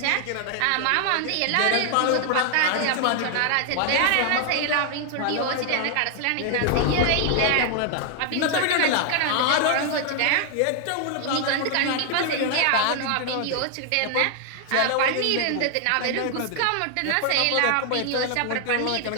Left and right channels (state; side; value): different; both; correlation 0.00